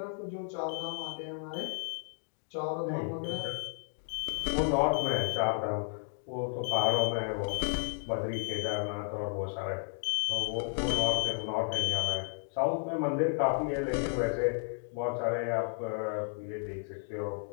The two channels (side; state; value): right; silent; 56 dB below the other